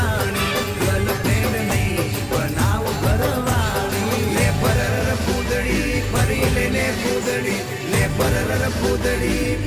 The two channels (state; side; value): identical; both; correlation 1.00